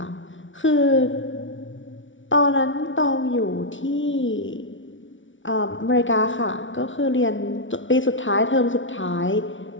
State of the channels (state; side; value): late; right; 0.56 ms